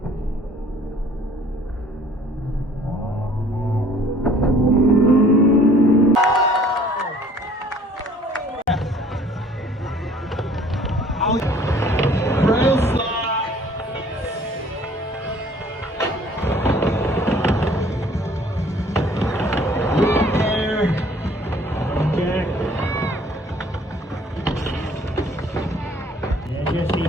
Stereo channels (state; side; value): normal; both; correlation 0.55